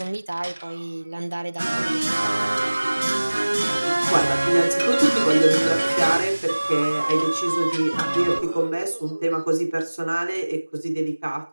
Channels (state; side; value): inverted; both; correlation -1.00